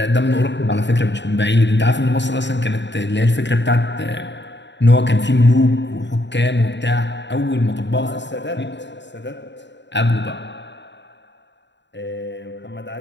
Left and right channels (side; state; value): right; late; 0.52 ms